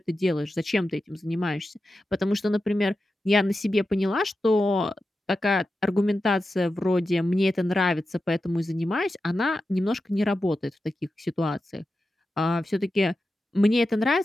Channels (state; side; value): normal; both; correlation 0.91